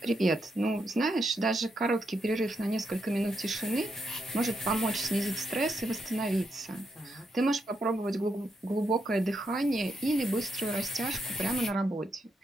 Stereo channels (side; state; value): both; normal; correlation 0.81